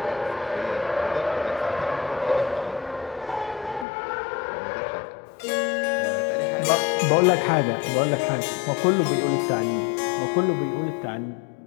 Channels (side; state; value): right; drops out; at 3.9 s